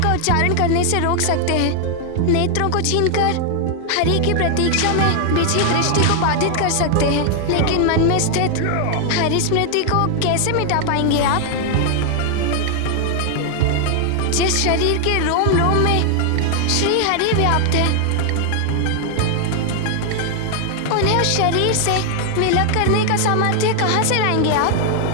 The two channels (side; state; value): both; different; correlation 0.00